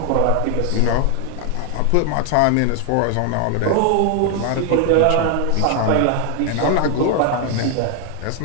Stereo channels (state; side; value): different; both; correlation 0.00